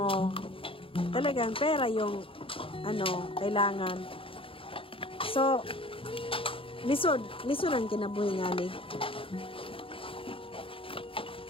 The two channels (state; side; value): late; right; 0.26 ms